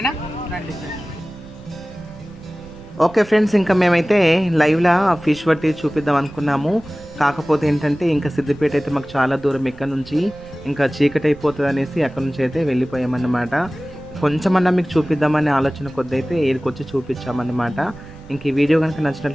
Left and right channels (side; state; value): right; noise; rumble, 19 dB below the sound